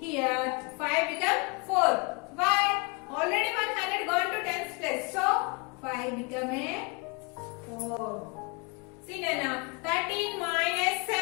5 become 4. Why? Already 100 gone to tens place. So 5 become a 4. See now 13 minus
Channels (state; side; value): quieter; right; 29.9 dB